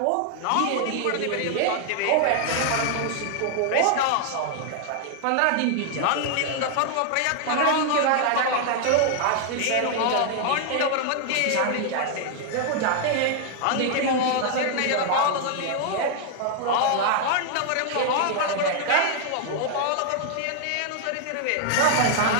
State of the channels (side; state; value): both; different; correlation 0.00